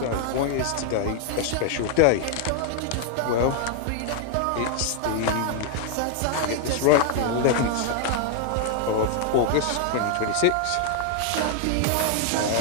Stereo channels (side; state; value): both; different; correlation 0.00